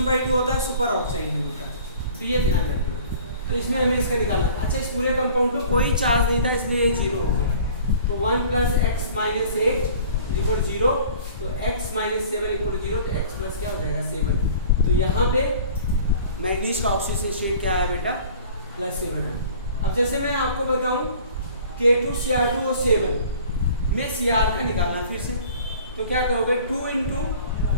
होता है सुपर ऑक्साइड में होता है। तो ये ध्यान रखना। तो इसमें हमें इसका निकालना। अच्छा इस पूरे कंपाउंड पे कोई चार्ज नहीं था, इसलिए ये 0 हो गया। तो 1 + x - 8 = 0, तो x - 7 = 0, तो x प्लस क्या हो जाएगा 7। तो यहाँ पे मैग्नीज का ऑक्सीजन स्टेट क्या है बेटा +7 है। अब जैसे मैं आपको बताऊं K2Cr2O7 में Cr का निकालना फिर से, तो क्या करोगे 2 ×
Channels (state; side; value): inverted; both; correlation -0.47